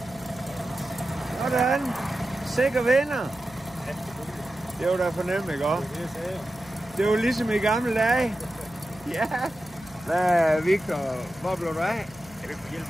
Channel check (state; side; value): noise; right; hum, 23 dB below the sound